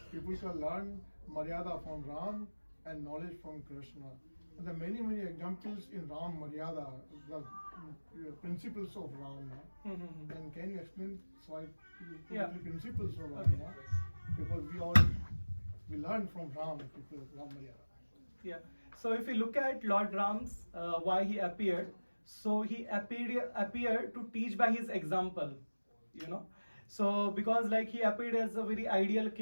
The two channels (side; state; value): both; inverted; correlation -1.00